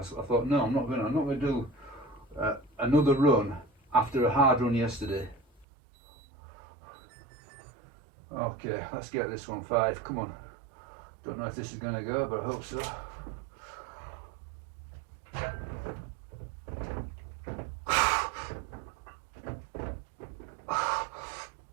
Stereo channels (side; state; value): left; drops out; at 5.7 s